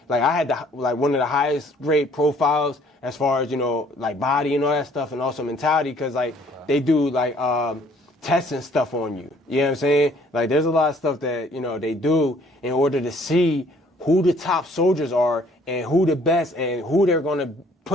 had one of the highest grade profiles as far as, body and all that stuff, and also mentality, because, they do, tests and stuff on you. You know what I'm saying? There's a lot of stuff that, they do in order to see who the top soldiers are and who the best and who they're going to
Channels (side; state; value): both; normal; correlation 0.59